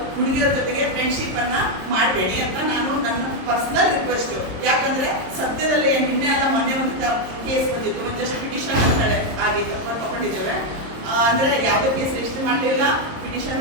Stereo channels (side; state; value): left; late; 27 ms